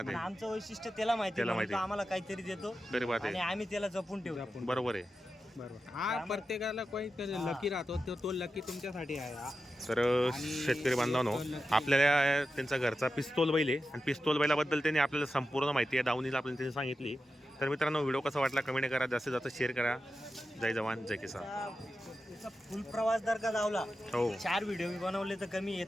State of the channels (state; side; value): normal; both; correlation 0.91